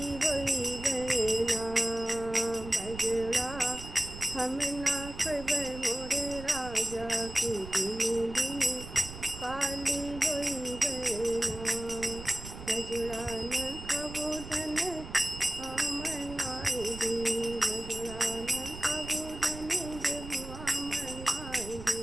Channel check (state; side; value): noise; right; rumble, 12 dB below the sound